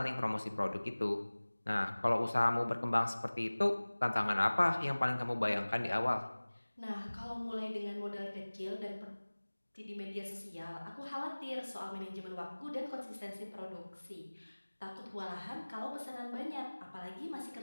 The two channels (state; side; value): inverted; both; correlation -1.00